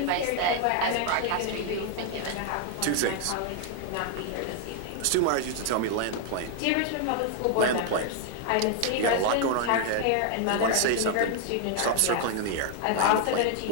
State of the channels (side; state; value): both; different; correlation 0.00